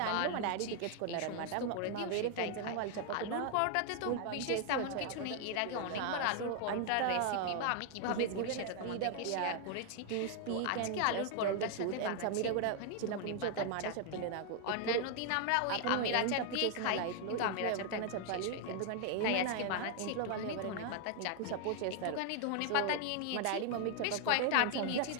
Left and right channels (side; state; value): both; different; correlation 0.00